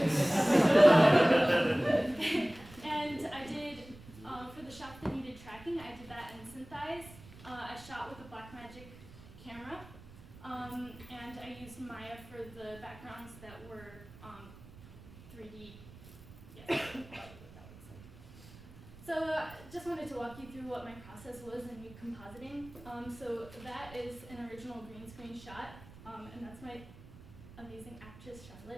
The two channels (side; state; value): right; noise; rumble, 19 dB below the sound